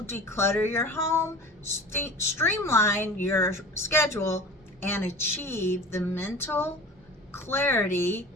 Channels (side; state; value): both; normal; correlation 0.38